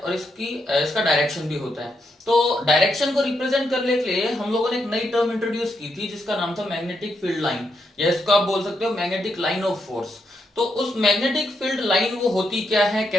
इसका डायरेक्शन भी होता है। तो डायरेक्शन को रिप्रेजेंट करने के लिए हम लोगों ने एक नई टर्म इंट्रोड्यूस की थी जिसका नाम था मैग्नेटिक फील्ड लाइन, या इसको आप बोल सकते हो मैग्नेटिक लाइन ऑफ फोर्स। तो उस मैग्नेटिक फील्ड लाइन वो होती क्या है,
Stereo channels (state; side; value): normal; both; correlation 0.81